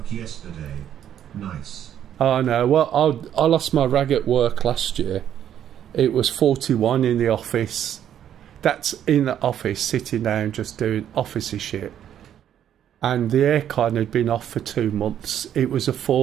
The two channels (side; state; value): left; quieter; 10.1 dB